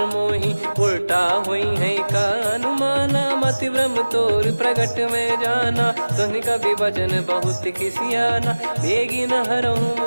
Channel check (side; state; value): both; inverted; correlation -1.00